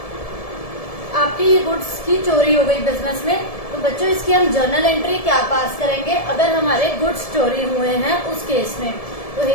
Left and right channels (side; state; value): right; late; 1.7 ms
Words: आपकी ये गुड्स की चोरी हो गई बिजनेस में, तो बच्चों इसकी हम जर्नल एंट्री क्या पास करेंगे अगर हमारे गुड्स चोरी हुए हैं उस केस में। तो